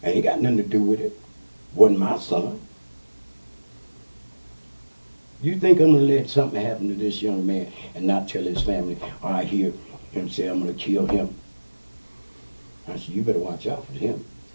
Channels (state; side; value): inverted; both; correlation -1.00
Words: Ain't got nothing to do with it. Wasn't my son. You think I'm gonna let something happen to this young man and not tell his family, or I hear him say I'm gonna kill him? I said, you better watch out for him.